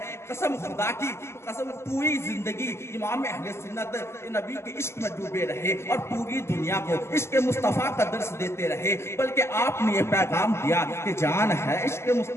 قسم خدا کی قسم، پوری زندگی امام اہل سنت نبی کے عشق میں ڈوبے رہے اور پوری دنیا کو عشق مصطفیٰ کا درس دیتے رہے، بلکہ آپ نے یہ پیغام دیا کہ جان ہے عشق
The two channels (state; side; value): late; right; 0.13 ms